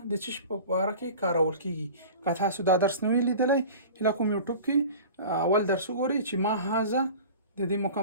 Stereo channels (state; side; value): inverted; both; correlation -0.39